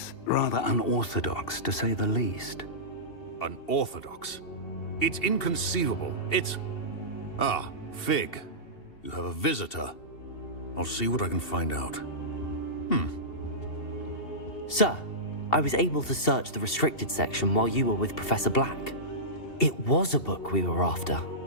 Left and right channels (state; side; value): late; right; 2.7 ms